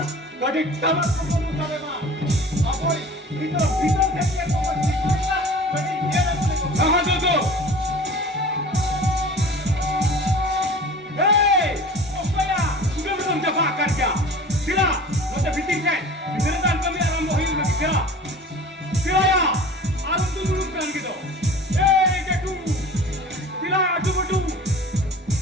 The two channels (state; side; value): normal; both; correlation 0.41